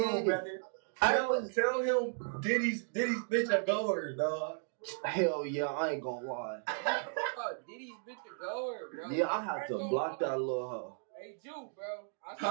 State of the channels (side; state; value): left; silent; digital silence